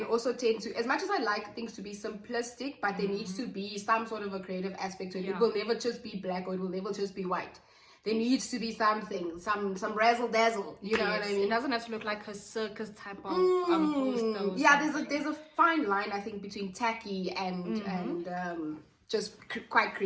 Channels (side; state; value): both; identical; correlation 1.00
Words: also tend to, as much as I like things to be simplistic, but there needs to be some sort of a creative aspect to it. It will never just be black, or it will never just be white. There needs to be something, some razzle dazzle. You know what I mean? It doesn't have to look like a circus type of poster. Yeah, there's a fine line, I think, between tacky and just quite